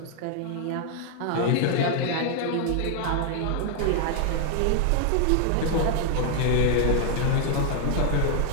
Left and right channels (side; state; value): both; different; correlation 0.00